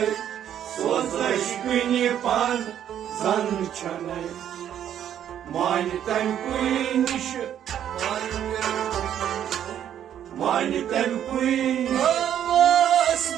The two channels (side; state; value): left; quieter; 10.1 dB